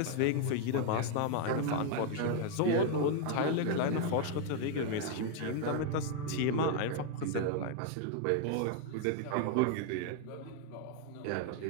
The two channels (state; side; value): different; both; correlation 0.00